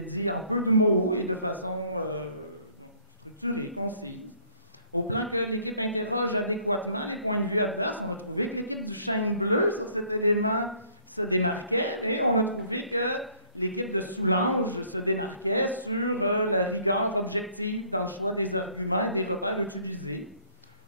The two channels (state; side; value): inverted; both; correlation -0.60